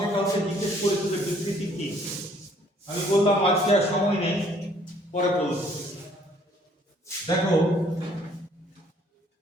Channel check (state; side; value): normal; both; correlation 0.61